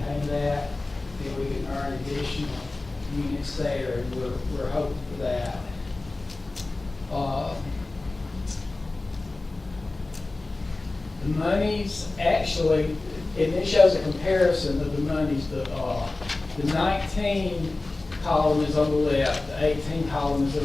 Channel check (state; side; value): quieter; right; 3.1 dB